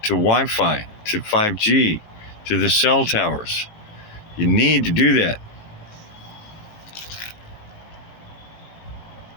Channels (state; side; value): late; right; 19 ms